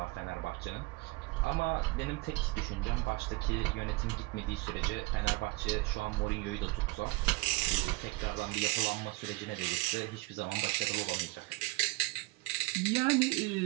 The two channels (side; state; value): left; quieter; 22.6 dB